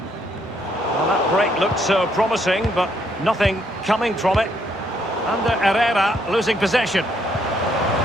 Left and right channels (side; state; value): both; normal; correlation 0.71